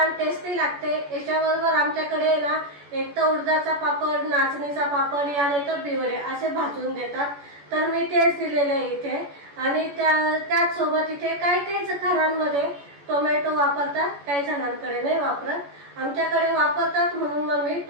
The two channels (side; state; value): left; late; 14 ms